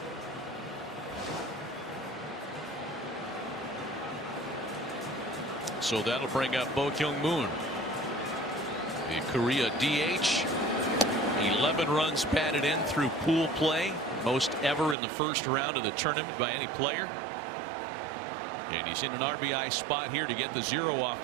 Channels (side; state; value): left; drops out; at 15.0 s